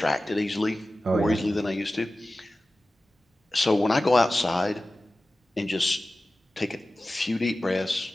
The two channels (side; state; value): both; normal; correlation 0.96